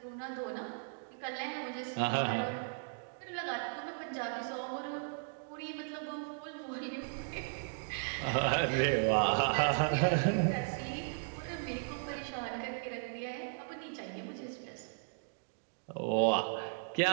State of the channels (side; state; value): left; silent; digital silence